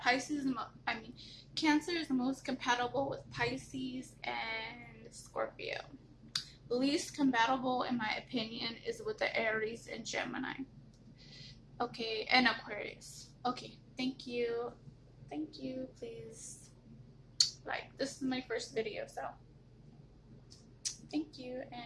Cancer is most compatible with Pisces and Scorpio. Least compatible, in my opinion, is with the Aries and Gemini. Okay, and Aquarius. Okay, thank you. Please, like, this is my first video, so thank you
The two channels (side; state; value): both; identical; correlation 1.00